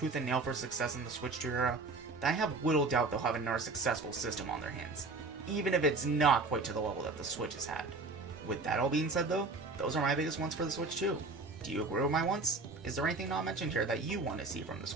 and nail for success in the Switch 2 era, then I have little doubt they'll have another successful system on their hands, even if it's not quite to the level that the Switch has had. With that all being said though, those are my biggest wants for the Switch 2. Do you agree with my wants? Is there anything not mentioned here that you want to see from the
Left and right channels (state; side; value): quieter; left; 3.6 dB